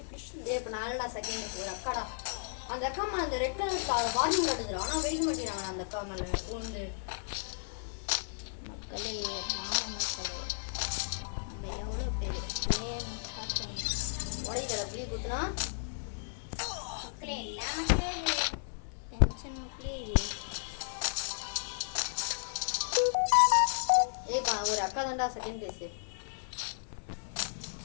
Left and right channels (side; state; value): right; silent; 55 dB below the other